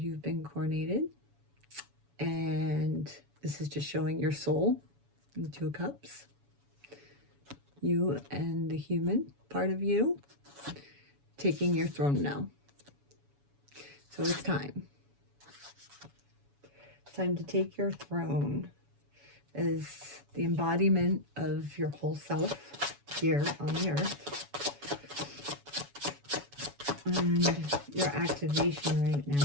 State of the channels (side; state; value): left; late; 7.1 ms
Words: you've been coronated. And this is just showing your soul, the Two of Cups. You and the human part of you. taking your throne now. So it's time. It's time to take your throne as the embodiment of your whole self here on the earth. And your activation right